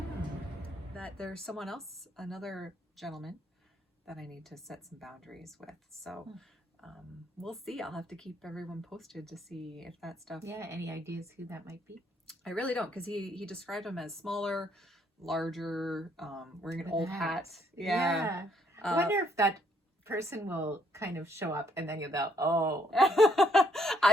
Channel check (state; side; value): normal; both; correlation 0.69